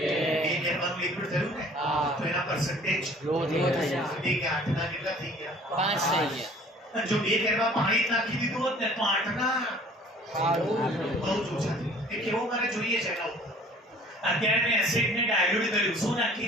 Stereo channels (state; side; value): normal; both; correlation 0.51